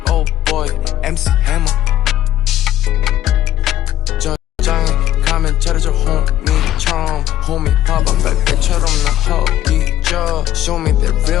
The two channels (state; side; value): quieter; right; 12.5 dB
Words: Oh boy, MC Hammer. 가면 차려줘 homie처럼 homie 봐봐 백배처럼 나 허기져. Show me that